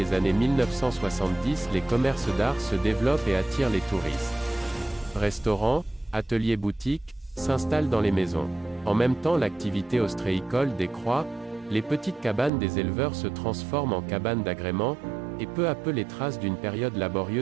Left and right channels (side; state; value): left; drops out; at 12.5 s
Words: années 1970 les commerces d'art se développent et attirent les touristes. Restaurants, ateliers boutiques, s'installent dans les maisons. En même temps l'activité ostréicole décroît, les petites cabanes des éleveurs se transforment en cabanes d'agrément, et peu à peu les traces d'une période